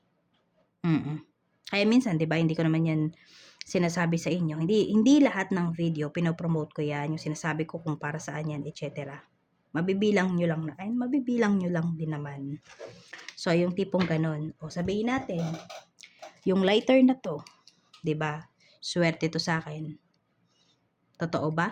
Kaya minsan, 'di ba, hindi ko naman 'yan sinasabi sa inyo. Hindi lahat ng video pino-promote ko 'yan, yung sinasabi ko kung para saan 'yan, etc. Mabibilang nyo lang din naman. So, yung tipong ganon. O sabihin natin, yung lighter na to, 'di ba? Swerte to sa akin. Totoo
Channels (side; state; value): both; identical; correlation 1.00